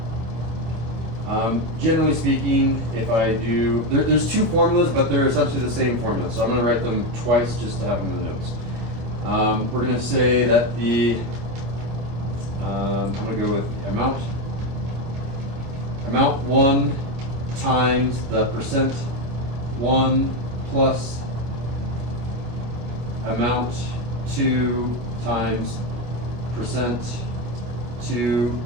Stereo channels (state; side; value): late; left; 26 ms